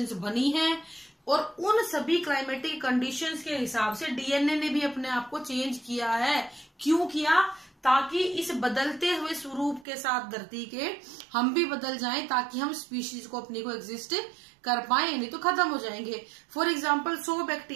बनी हैं। और उन सभी क्लाइमेटिक कंडीशंस के हिसाब से डीएनए ने भी अपने आप को चेंज किया है। क्यों किया, ताकि इस बदलते हुए स्वरूप के साथ धरती के हम भी बदल जाएं, ताकि हम स्पीशीज को अपनी को एग्जिस्ट कर पाए, नहीं तो खत्म हो जाएंगे। फॉर एग्जाम्पल 100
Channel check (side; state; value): left; drops out; at 9.9 s